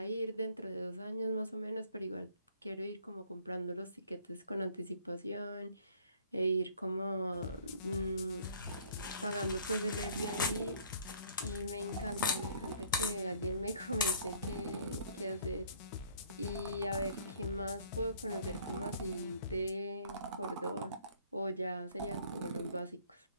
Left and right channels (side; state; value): both; inverted; correlation -0.58